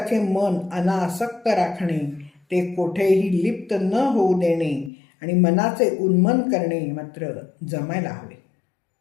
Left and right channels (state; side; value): drops out; right; at 4.9 s